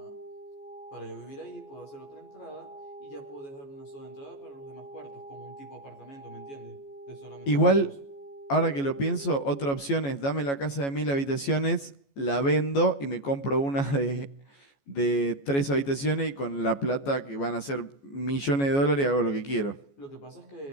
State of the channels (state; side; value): late; right; 14 ms